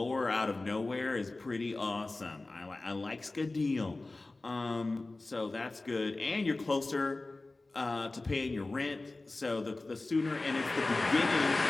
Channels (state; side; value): quieter; right; 3.1 dB